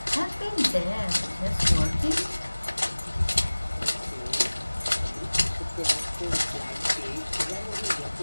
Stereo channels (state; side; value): inverted; both; correlation -1.00